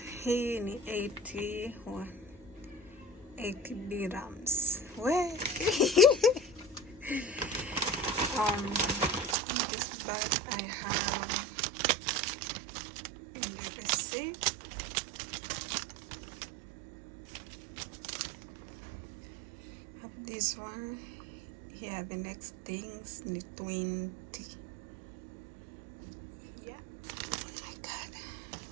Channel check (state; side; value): drops out; left; at 9.3 s